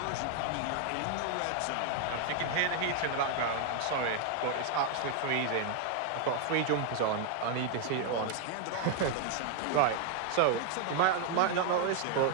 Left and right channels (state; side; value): different; both; correlation 0.00